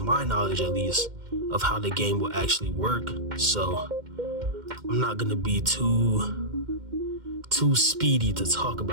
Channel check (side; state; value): left; late; 2.1 ms